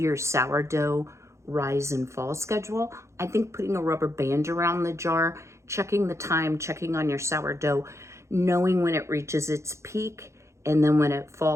sourdough rise and fall schedule. I think putting a rubber band around the jar, checking the time, checking on your sourdough, knowing when it reaches its peak, and then when it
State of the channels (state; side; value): late; left; 0.14 ms